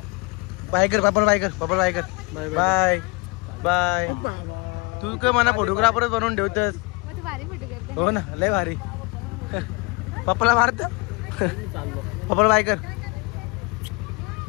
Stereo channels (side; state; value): right; quieter; 28.6 dB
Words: बाय कर पापड बाय कर पापड बाय कर बाय बाय तू काय मला फोटोग्राफरच बनवून ठेवतस हो ना लय भारी पप्पाला मारत पप्पाला बाय कर